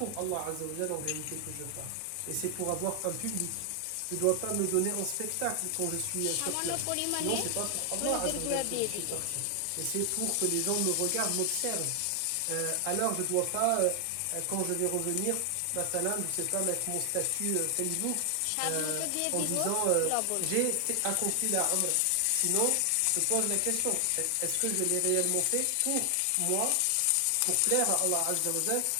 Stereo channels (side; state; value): both; different; correlation 0.00